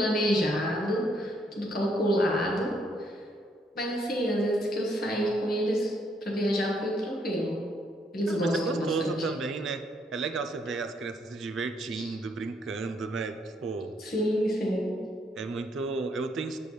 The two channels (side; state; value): both; normal; correlation 0.71